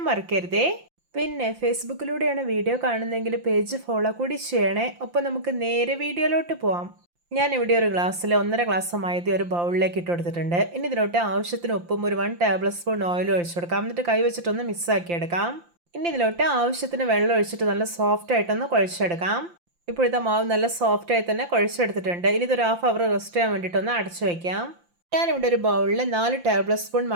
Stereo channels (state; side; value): late; left; 5.8 ms